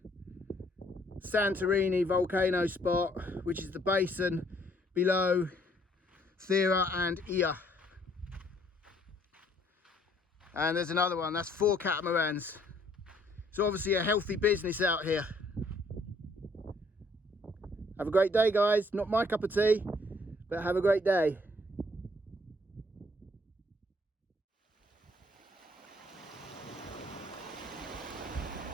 Santorini volcano spot, which is the basin below Thera and Ia. And there's another one, that's 4 catamarans. It's obviously a healthy business out here. Have a great day, guys. Not my cup of tea, but have a great day.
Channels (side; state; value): both; normal; correlation 0.64